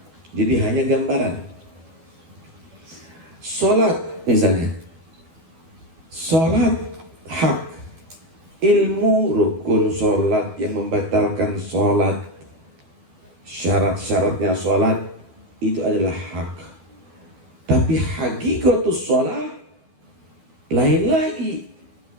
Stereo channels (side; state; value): left; late; 12 ms